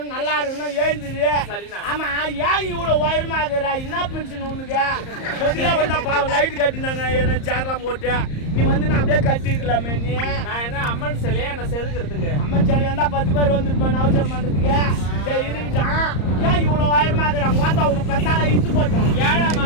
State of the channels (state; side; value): late; right; 34 ms